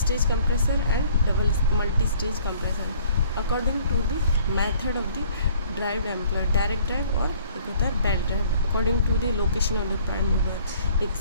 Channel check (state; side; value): inverted; both; correlation -0.56